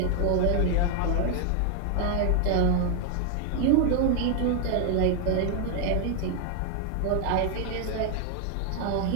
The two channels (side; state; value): both; different; correlation 0.00